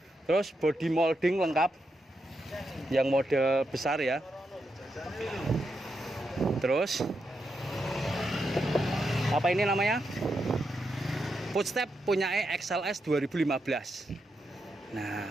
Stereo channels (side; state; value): both; normal; correlation 0.84